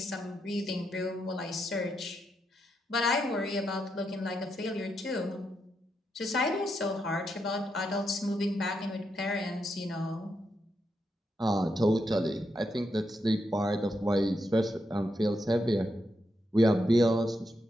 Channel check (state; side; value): normal; both; correlation 0.82